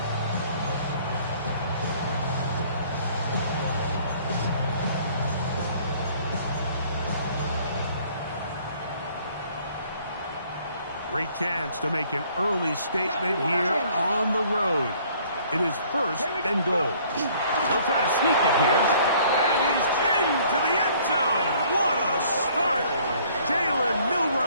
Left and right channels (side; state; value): both; inverted; correlation -0.58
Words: Great chance to make an early statement here on the road. It is first and goal. He'll try to sneak it here. And he's into the end zone. What a start. Jalen